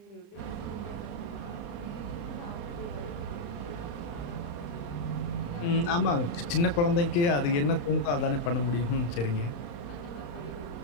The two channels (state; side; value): late; right; 35 ms